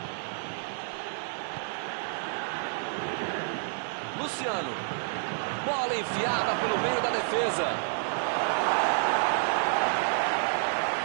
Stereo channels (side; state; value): left; silent; digital silence